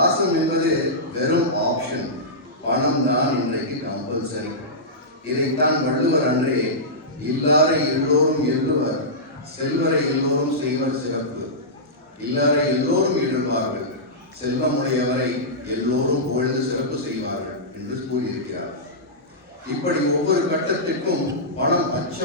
என்பது வெறும் ஆப்ஷன், பணம் தான் இன்றைக்கு கம்பல்சரி. இதைத்தான் வள்ளுவர் அன்றே இல்லாரை எல்லோரும் எள்ளுவர், செல்வரை எல்லோரும் செய்வர் சிறப்பு. இல்லாரை எல்லோரும் எழுவார்கள், செல்வமுடையவரை எல்லோரும் புகழ்ந்து சிறப்பு செய்வார்கள் என்று கூறியிருக்கிறார். இப்படி ஒவ்வொரு கட்டத்திற்கும் பணம்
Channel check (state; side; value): normal; both; correlation -0.14